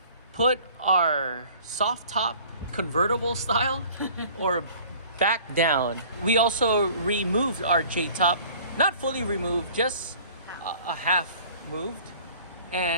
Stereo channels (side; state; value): both; inverted; correlation -0.50